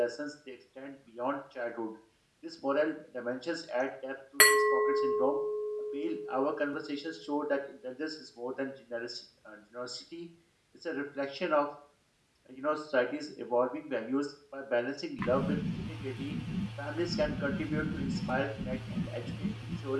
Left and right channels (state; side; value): identical; both; correlation 1.00